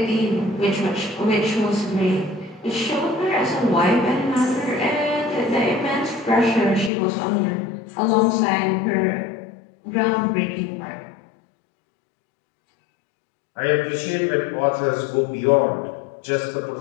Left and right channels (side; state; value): right; drops out; at 6.9 s